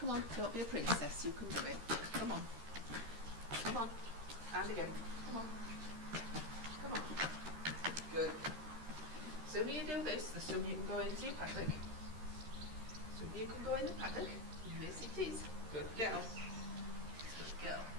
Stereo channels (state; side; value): late; left; 13 ms